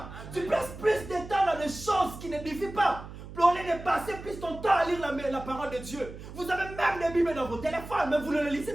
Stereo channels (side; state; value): right; noise; hum, 13 dB below the sound